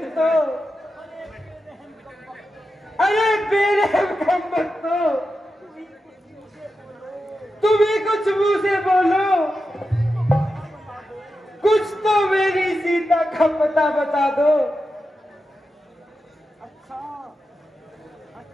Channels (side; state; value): both; normal; correlation 0.90